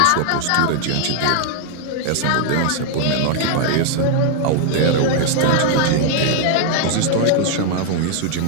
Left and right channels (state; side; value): different; both; correlation 0.00